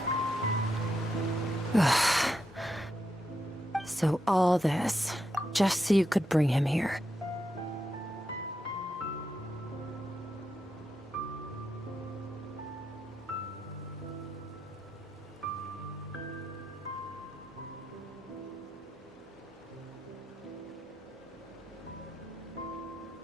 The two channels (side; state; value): both; normal; correlation 0.84